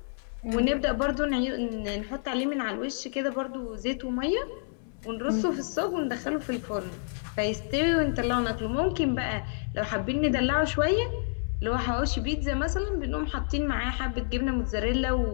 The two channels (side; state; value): right; silent; 59 dB below the other